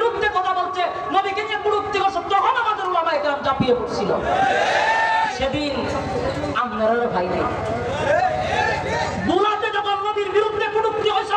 কথা বলছে, নবীকে নিয়ে কুরুক্তি করছে, তখন আমাদের উলামায়ে কেরাম ঝাঁপিয়ে পড়ছিল। সেদিন আপনারা ভাই নেই, বুলাতে যখন নবীর বিরুদ্ধে কুরুক্তি হয়েছে,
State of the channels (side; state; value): both; identical; correlation 1.00